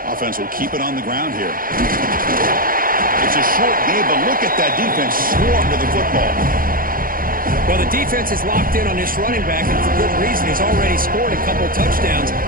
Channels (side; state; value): left; late; 0.41 ms